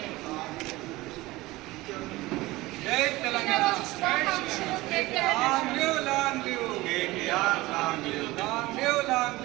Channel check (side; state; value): left; quieter; 19.6 dB